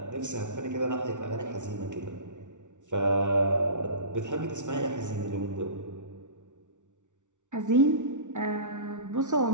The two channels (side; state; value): left; late; 0.86 ms